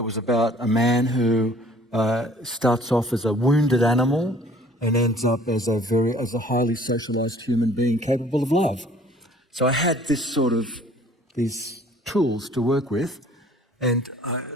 was about a man who starts off as a wounded animal and ends up as a highly socialized human being capable of love. So I had these tools to work with, and I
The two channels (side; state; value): both; normal; correlation 0.53